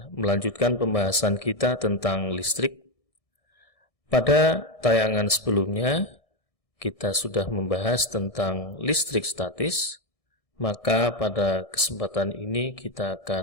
melanjutkan pembahasan kita tentang listrik. Pada tayangan sebelumnya kita sudah membahas tentang listrik statis, maka pada kesempatan ini kita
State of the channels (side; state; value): right; late; 1.6 ms